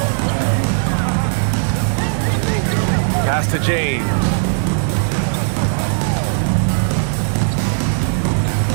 Pass to James.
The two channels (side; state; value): left; silent; digital silence